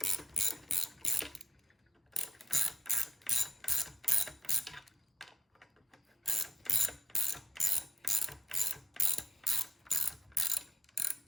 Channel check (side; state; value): both; normal; correlation 0.82